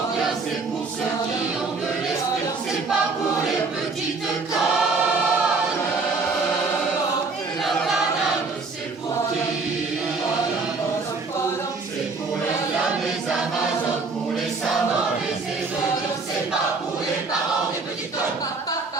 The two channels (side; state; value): left; quieter; 4.1 dB